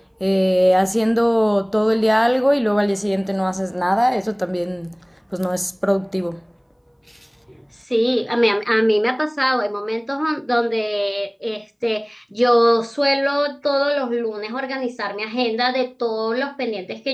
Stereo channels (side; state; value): both; identical; correlation 1.00